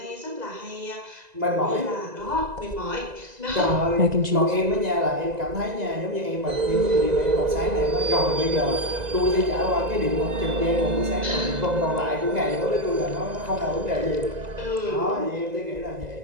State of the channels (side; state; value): left; late; 2.0 ms